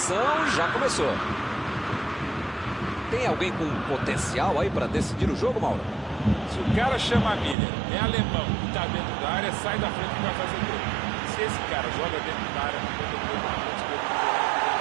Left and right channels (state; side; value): drops out; left; at 7.6 s